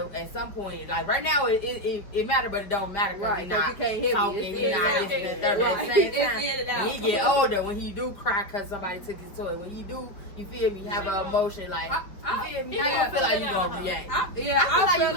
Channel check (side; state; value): right; late; 5.2 ms